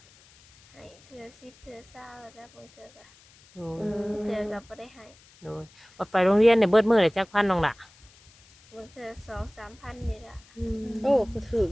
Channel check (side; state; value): left; noise; hiss, 27 dB below the sound